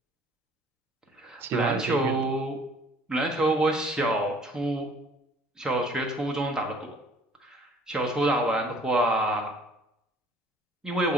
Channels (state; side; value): normal; both; correlation 0.55